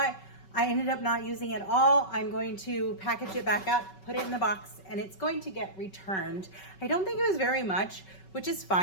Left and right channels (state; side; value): late; right; 5.3 ms